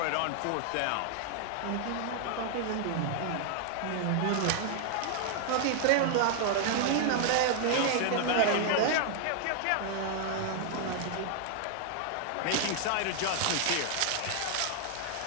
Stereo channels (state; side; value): different; both; correlation 0.00